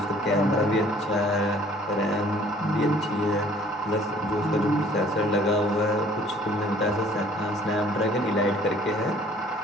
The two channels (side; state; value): both; normal; correlation 0.55